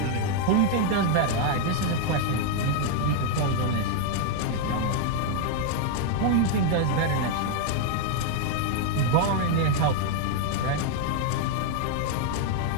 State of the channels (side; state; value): both; different; correlation 0.00